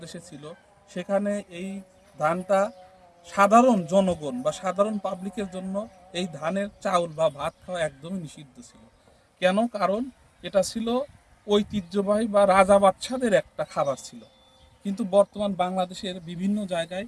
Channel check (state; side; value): identical; both; correlation 1.00